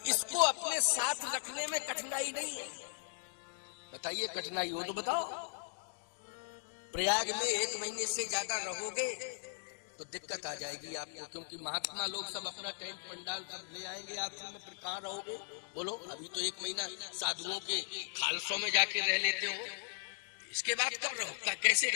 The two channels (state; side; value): silent; right; digital silence